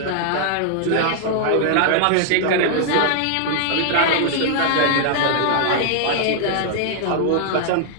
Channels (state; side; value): different; both; correlation 0.00